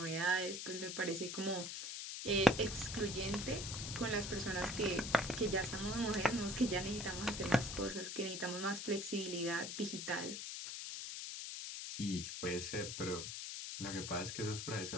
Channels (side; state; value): left; noise; hiss, 5 dB below the sound